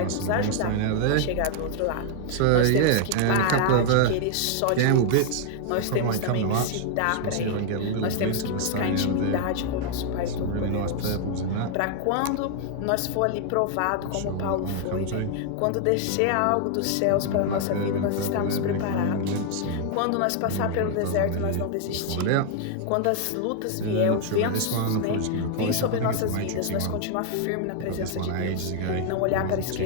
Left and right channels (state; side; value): different; both; correlation 0.00